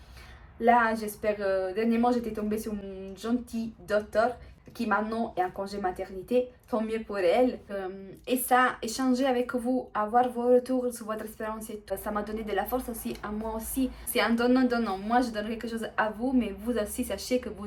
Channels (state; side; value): identical; both; correlation 1.00